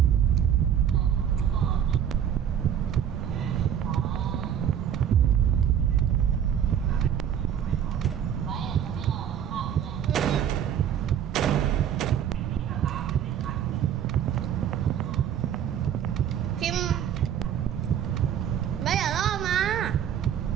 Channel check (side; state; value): left; quieter; 9.3 dB